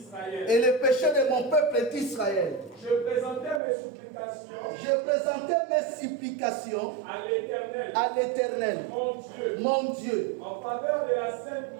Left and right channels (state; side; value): drops out; left; at 3.6 s